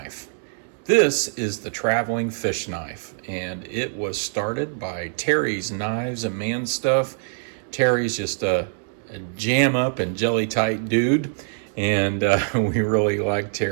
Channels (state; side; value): silent; left; digital silence